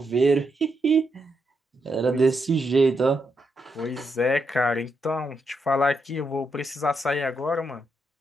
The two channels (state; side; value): normal; both; correlation 0.81